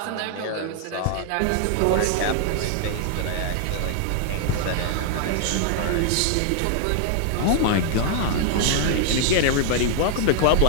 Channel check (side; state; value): both; different; correlation 0.00